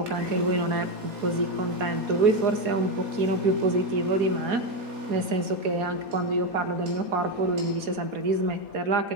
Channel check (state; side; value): late; left; 4.2 ms